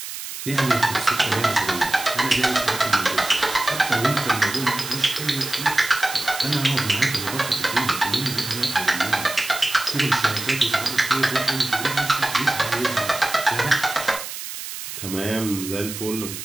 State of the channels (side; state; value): right; noise; hiss, 8 dB below the sound